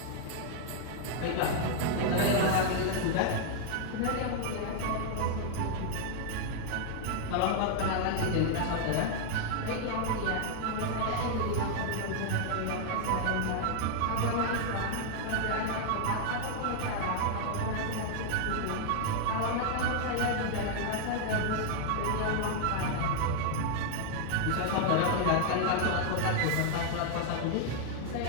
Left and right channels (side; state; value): both; different; correlation 0.00